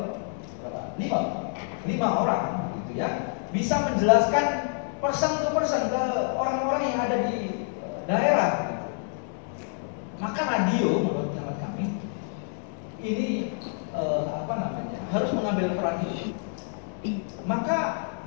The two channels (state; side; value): silent; right; 60 dB below the other